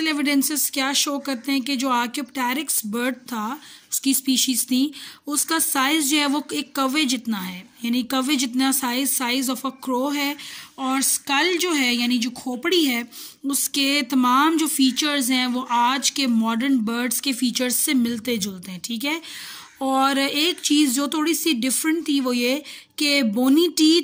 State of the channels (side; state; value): both; identical; correlation 1.00